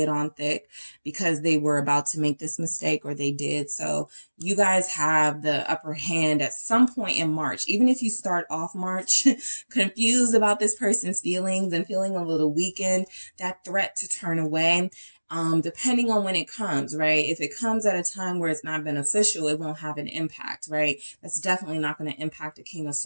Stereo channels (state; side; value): inverted; both; correlation -1.00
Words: it on thick because they were about to make this mistake, or they did. So you guys have the upper hand at some point in March. Even if you start off March confused about this person's feelings and feeling a little weakened, that threat to turn away, depending on when it comes, right? If it comes at a time where it's not beneficial, it won't have an impact, right? That's definitely not going to impact a King of